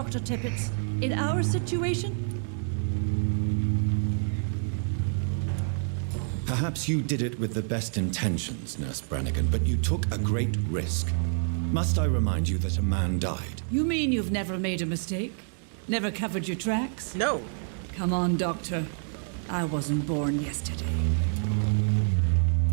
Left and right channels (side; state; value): left; silent; 59 dB below the other